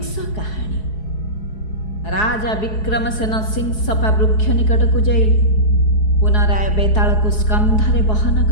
କାହାଣୀ। ରାଜା ବିକ୍ରମସେନ ସିଂସପା ବୃକ୍ଷ ନିକଟକୁ ଯାଇ ପୁନରାୟ ବେତାଳକୁ ସ୍କନ୍ଧରେ ବହନ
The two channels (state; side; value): late; right; 4.7 ms